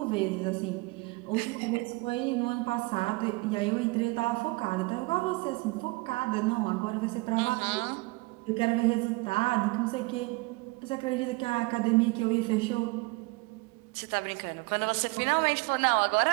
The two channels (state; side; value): quieter; left; 24.8 dB